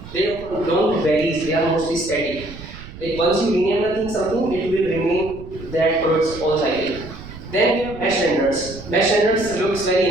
they often don't vary, they are mostly static. Like once you rename the thing something, it will remain that for its whole cycle. Then we have mesh renders. Mesh renders looks very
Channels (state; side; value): noise; right; rumble, 15 dB below the sound